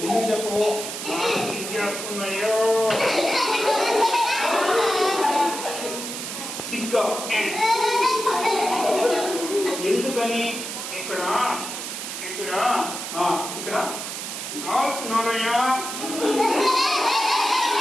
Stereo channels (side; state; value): right; noise; hiss, 6 dB below the sound